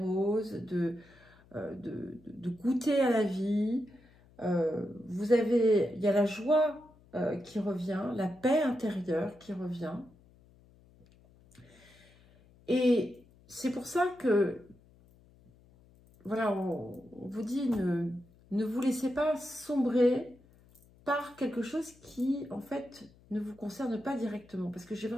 de goûter à la vie. Il y a la joie qui revient, la paix intérieure qui revient. Et c'est pour ça que, voilà, on vous dit, ne vous laissez pas sombrer par quelque chose qui, en fait, ne vous concerne pas directement. Parce que j'ai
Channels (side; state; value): left; noise; hum, 27 dB below the sound